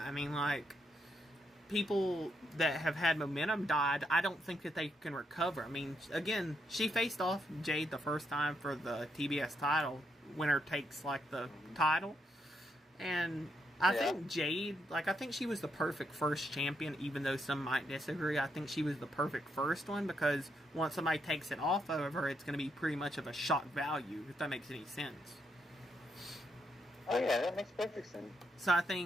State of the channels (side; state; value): both; normal; correlation 0.78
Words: People that have had momentum died, I don't think that they can recover. Again, she faced off Jade the first time for the TBS title. Winner takes, the title. And I think Jade, like, I think she was the perfect first champion, even though some might disagree. I think she was the perfect first one because once somebody takes it off of her, it's going to be pretty much of a shock value, if that makes any sense. Oh, yeah, that makes perfect sense. So I